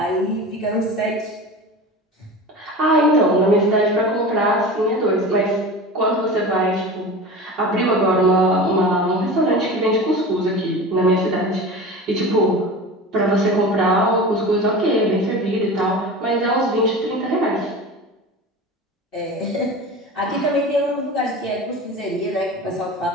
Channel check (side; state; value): both; normal; correlation 0.32